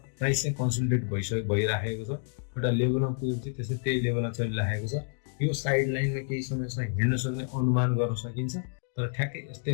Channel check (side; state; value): right; silent; digital silence